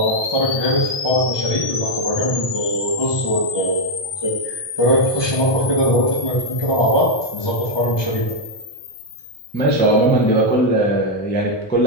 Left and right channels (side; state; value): right; late; 1.6 ms